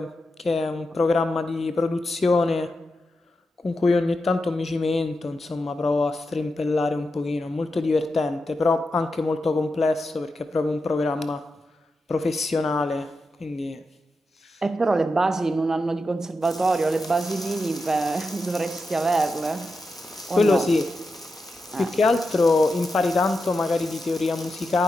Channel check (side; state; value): both; normal; correlation 0.88